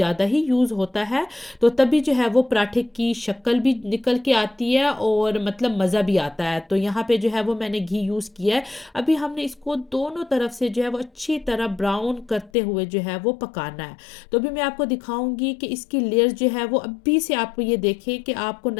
ही यूज़ होता है, तो तभी जो है वो पराठे की शक्ल भी निकल के आती है और मतलब मज़ा भी आता है। तो यहाँ पे जो है वो मैंने घी यूज़ किया है। अभी हमने इसको दोनों तरफ से जो है वो अच्छी तरह ब्राउन करते हुए जो है वो पकाना है। तो अभी मैं आपको दिखाऊँगी कि इसकी लेयर्स जो है वो अभी से आप ये देखें कि आपको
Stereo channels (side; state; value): right; drops out; at 12.5 s